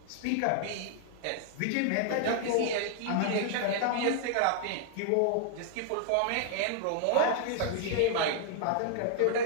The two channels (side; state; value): both; different; correlation 0.00